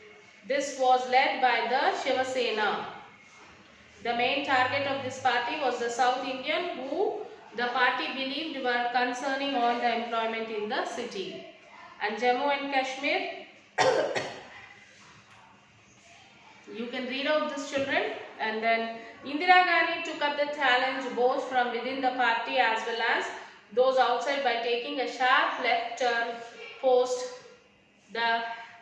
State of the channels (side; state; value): both; identical; correlation 1.00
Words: This was led by the Shiva Sena. The main target of this party was the South Indian, who the party believed were concerning all the employment in the city. And Jammu and Kashmir, you can read out this, children. And then Indira Gandhi took up the challenge both from within the party as well as those outside by taking a sharp left turn post the